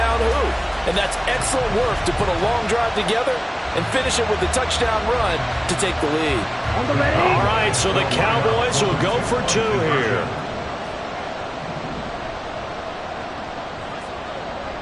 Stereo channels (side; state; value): both; identical; correlation 1.00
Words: who. And that's excellent work to put a long drive together and finish it with a touchdown run to take the lead. On the ready. All right, so the Cowboys will go for 2 here.